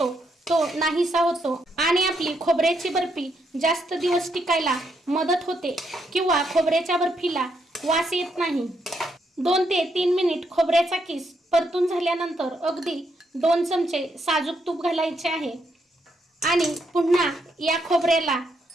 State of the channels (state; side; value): normal; both; correlation 0.77